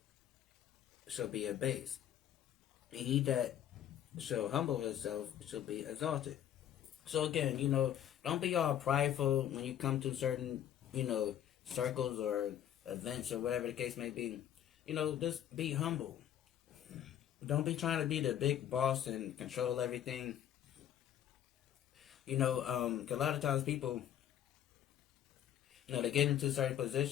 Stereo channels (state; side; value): quieter; right; 10.6 dB